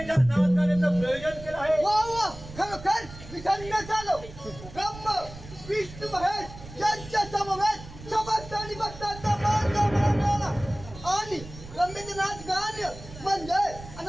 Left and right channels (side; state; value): right; noise; rumble, 15 dB below the sound